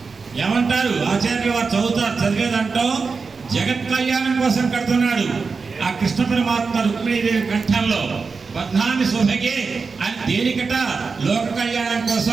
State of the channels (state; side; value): quieter; left; 4.7 dB